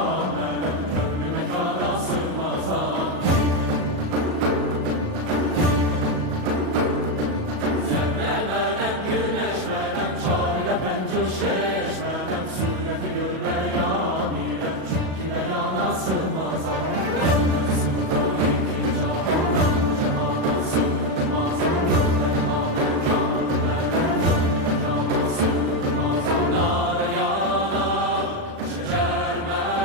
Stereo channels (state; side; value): late; left; 37 ms